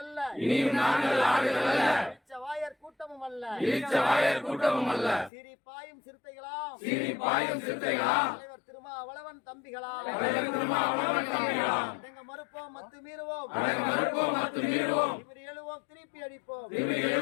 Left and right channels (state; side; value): drops out; right; at 5.3 s